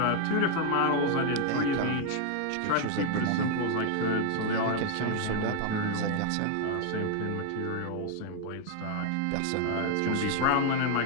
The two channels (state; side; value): different; both; correlation 0.00